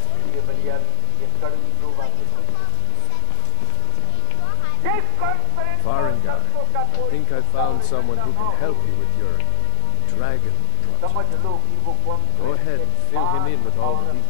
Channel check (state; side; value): different; both; correlation 0.00